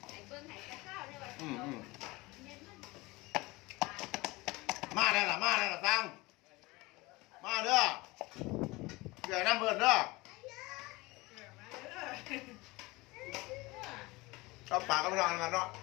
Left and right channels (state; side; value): quieter; right; 22.5 dB